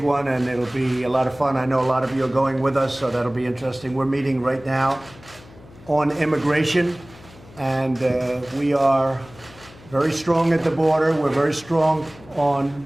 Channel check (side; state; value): left; noise; hum, 22 dB below the sound